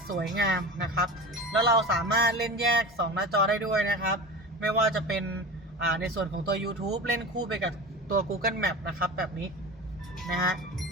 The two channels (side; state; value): both; normal; correlation 0.31